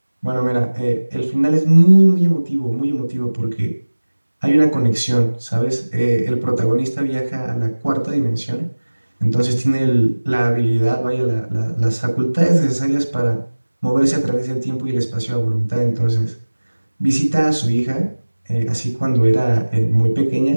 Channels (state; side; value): inverted; both; correlation -1.00